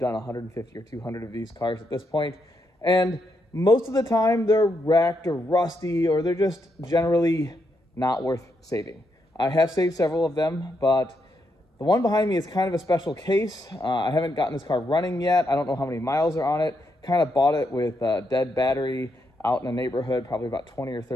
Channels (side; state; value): both; normal; correlation 0.80